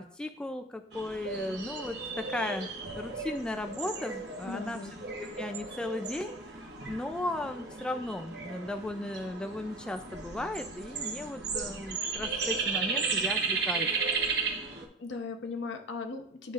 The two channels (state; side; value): normal; both; correlation 0.36